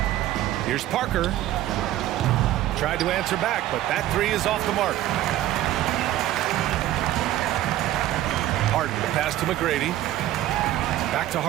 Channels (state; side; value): quieter; left; 13.9 dB